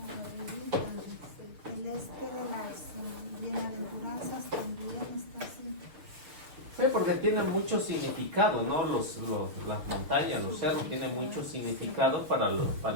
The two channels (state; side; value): late; left; 6.8 ms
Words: arribita. El de las bienaventuranzas también está así. Sí, porque tiene mucho significado, ¿no? Las montañas, los cerros tienen mucho significado para